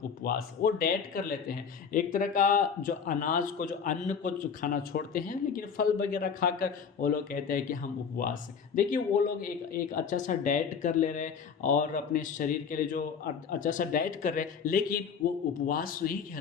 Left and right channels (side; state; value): right; quieter; 6.6 dB